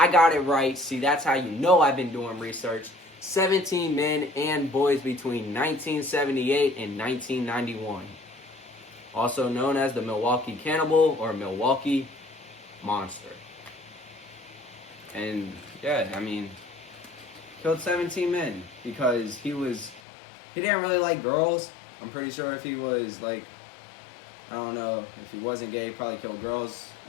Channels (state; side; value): drops out; right; at 20.0 s